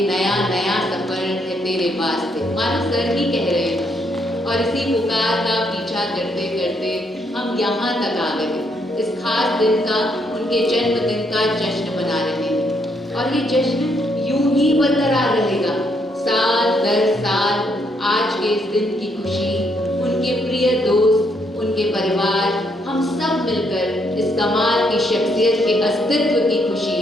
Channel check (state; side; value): normal; both; correlation 0.73